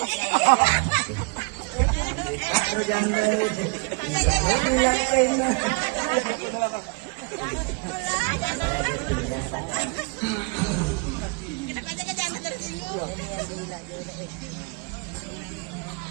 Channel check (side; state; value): left; quieter; 32.8 dB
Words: Aku janda nih.